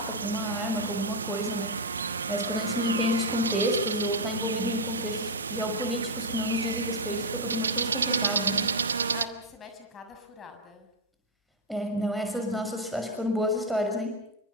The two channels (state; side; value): normal; both; correlation 0.00